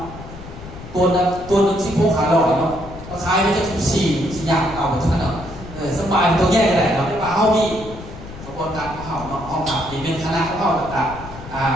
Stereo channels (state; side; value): noise; left; rumble, 14 dB below the sound